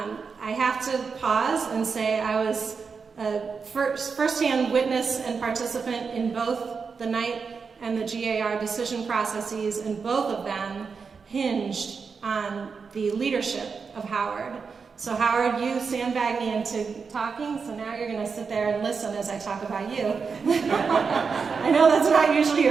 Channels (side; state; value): left; quieter; 5.4 dB